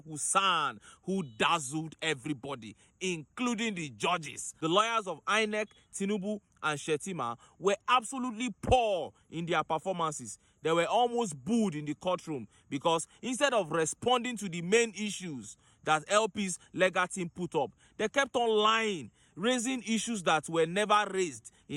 who dazzled everybody, including the judges. The lawyers of INEC, TINUBU, and Shetima were absolutely poor in their performances. They were almost booed in the courtroom because instead of responding to the main issues that LP's legal team put up, they kept on lying, raising issues that were never raised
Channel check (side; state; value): both; identical; correlation 1.00